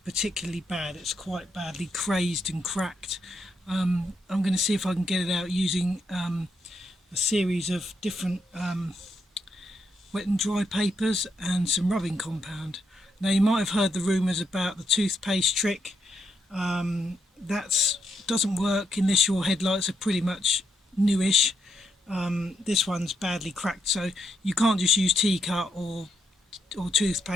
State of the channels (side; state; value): both; normal; correlation 0.79